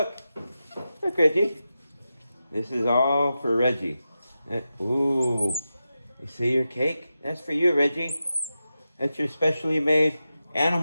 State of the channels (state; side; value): inverted; both; correlation -0.91